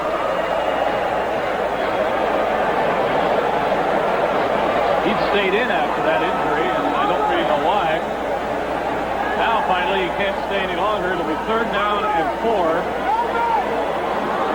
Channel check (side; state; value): both; identical; correlation 1.00